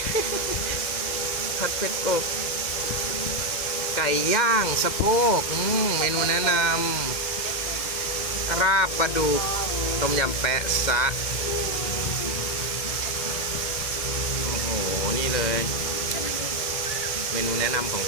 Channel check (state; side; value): late; right; 2.1 ms